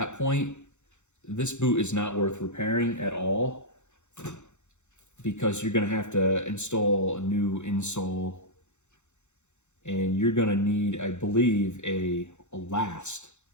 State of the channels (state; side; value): late; right; 0.83 ms